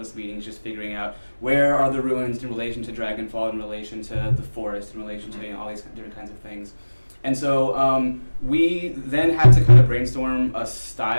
meetings just figuring out where are the ruins in relation to Dragonfall, in relation to the forest, in relation to all these different kinds of things. And so we then had to kind of brainstorm a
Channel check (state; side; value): inverted; both; correlation -1.00